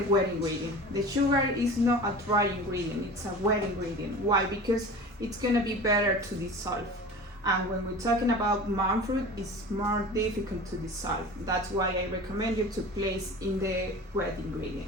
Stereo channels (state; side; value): normal; both; correlation 0.36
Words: wet ingredient. The sugar is not a dry ingredient, it's a wet ingredient. Why? Because it's gonna be better to dissolve. And when we're talking about monk fruit, it's more difficult to dissolve. That's why I recommend you to place in the wet